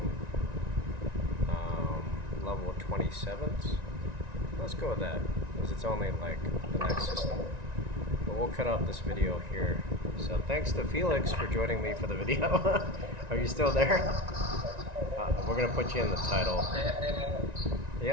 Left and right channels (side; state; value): left; late; 1.9 ms